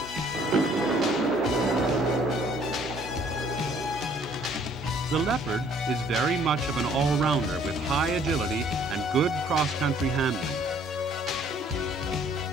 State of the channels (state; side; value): normal; both; correlation 0.60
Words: The Leopard is very much of an all-rounder with high agility and good cross-country handling.